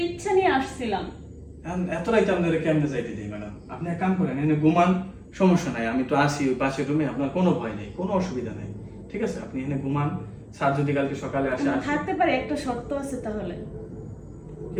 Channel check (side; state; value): both; identical; correlation 1.00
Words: ইচ্ছা নিয়ে আসছিলাম। এখন এত রাইতে আপনারা কেমনে যাইতে দিই ম্যাডাম? আপনি এক কাম করেন, এনে ঘুমান, সমস্যা নাই, আমি তো আসি ওই পাশের রুমে, আপনার কোনো ভয় নেই, কোনো অসুবিধা নেই, ঠিক আছে? আপনি এনে ঘুমান, স্যার যদি কালকে সকালে আসে আমি আসে। থাকতে পারি, একটা শর্ত আছে। তাহলে